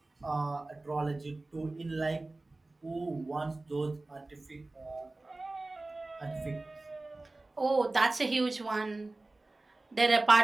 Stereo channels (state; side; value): quieter; left; 3.0 dB